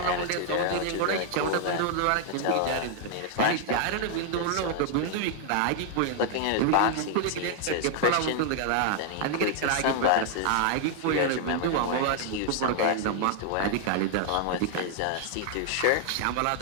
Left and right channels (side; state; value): both; different; correlation 0.00